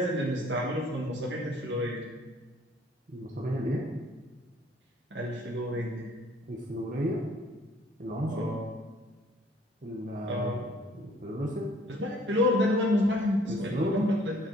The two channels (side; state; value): both; normal; correlation 0.59